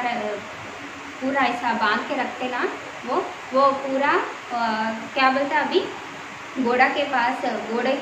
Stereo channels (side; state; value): both; identical; correlation 1.00